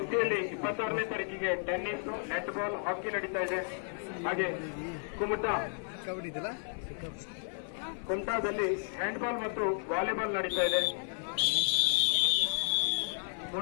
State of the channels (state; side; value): silent; right; 56 dB below the other